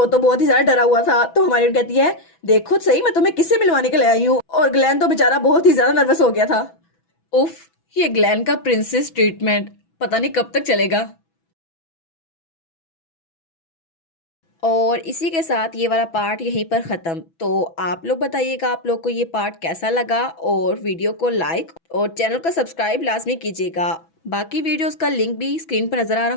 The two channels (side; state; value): right; late; 6.1 ms